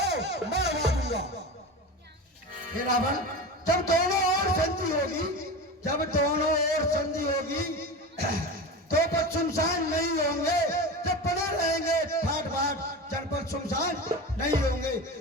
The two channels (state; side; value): normal; both; correlation 0.27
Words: मरवा दूंगा। हे रावण, जब दोनों ओर संधि होगी, जब दोनों ओर संधि होगी तो पर सुनसान नहीं होंगे। जब पड़े रहेंगे ठाट बाट, जनपद सुनसान नहीं होंगे।